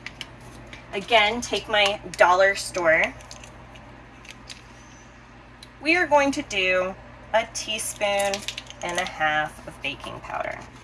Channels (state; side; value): identical; both; correlation 1.00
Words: Again, take my dollar store. We are going to do 1.5 teaspoons of baking powder.